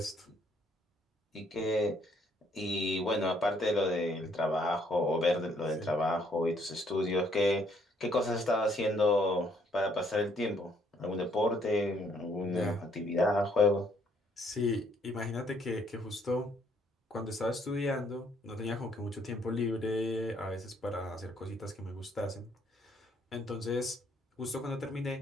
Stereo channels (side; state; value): both; normal; correlation 0.67